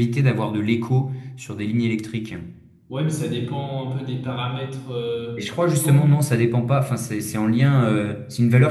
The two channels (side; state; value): both; identical; correlation 1.00